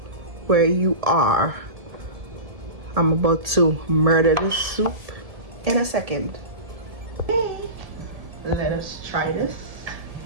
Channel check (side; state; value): left; late; 1.7 ms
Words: where you are. I'm about to murder this soup in a second. Okay, let us try this.